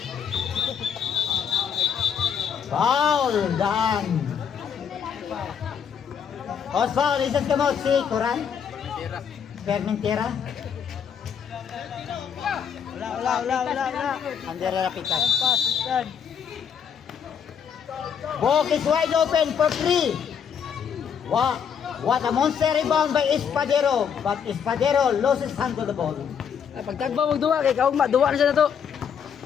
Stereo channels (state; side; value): quieter; right; 7.5 dB